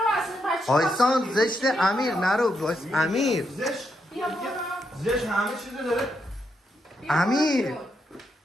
اصلا بچه. آیسان زشته امیر نرو امیر زشت بیا برو. زشت همه چیزو داره. امیر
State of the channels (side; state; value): both; normal; correlation 0.80